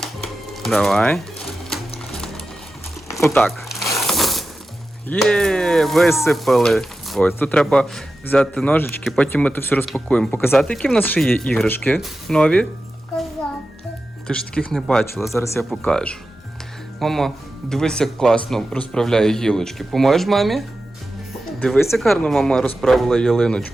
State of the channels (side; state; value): both; normal; correlation 0.92